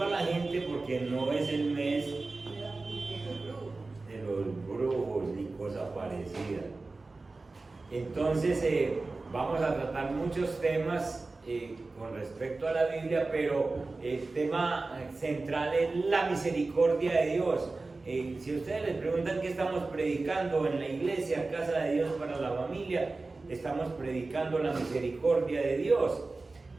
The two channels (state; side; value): quieter; left; 3.5 dB